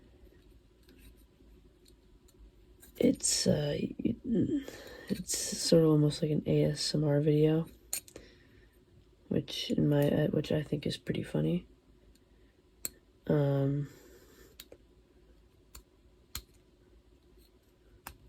It's sort of almost like an ASMR video, which I think is pretty funny.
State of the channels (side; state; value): both; identical; correlation 1.00